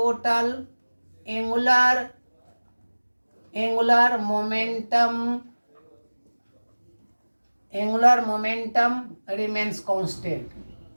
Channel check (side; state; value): both; inverted; correlation -1.00